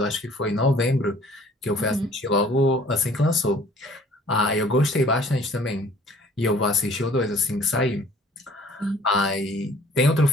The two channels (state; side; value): normal; both; correlation 0.53